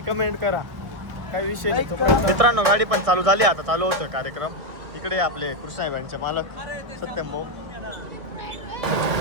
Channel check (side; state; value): left; late; 1.7 ms